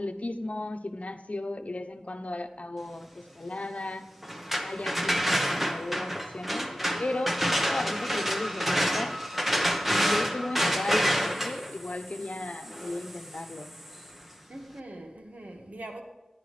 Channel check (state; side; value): normal; both; correlation 0.93